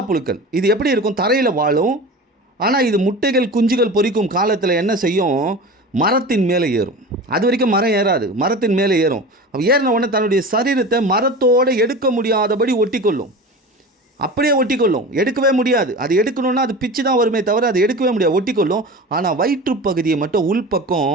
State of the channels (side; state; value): both; normal; correlation 0.32